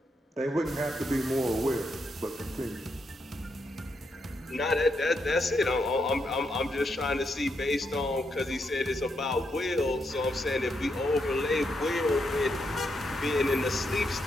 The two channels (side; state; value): both; normal; correlation 0.80